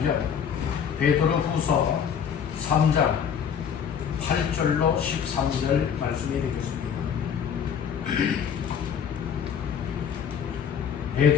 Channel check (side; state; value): right; quieter; 7.7 dB